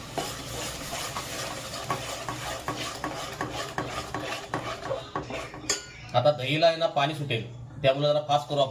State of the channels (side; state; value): both; identical; correlation 1.00